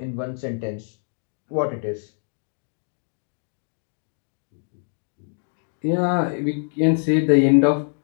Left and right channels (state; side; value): silent; right; digital silence